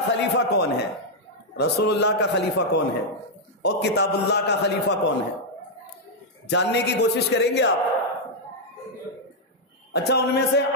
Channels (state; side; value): normal; both; correlation -0.04